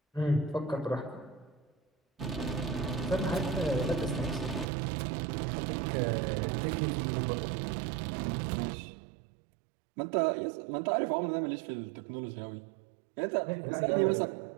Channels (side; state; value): left; drops out; at 4.7 s